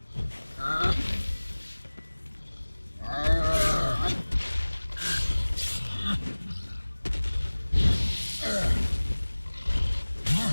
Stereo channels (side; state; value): both; inverted; correlation -1.00